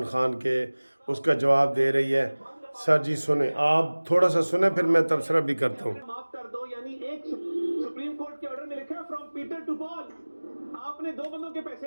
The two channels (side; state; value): both; inverted; correlation -1.00